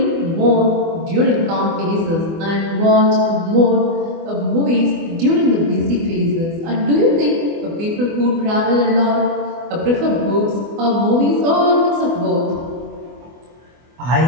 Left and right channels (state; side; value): late; left; 24 ms